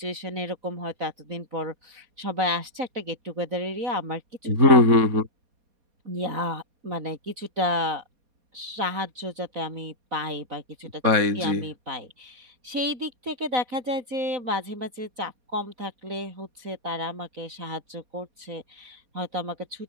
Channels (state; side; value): late; left; 4.2 ms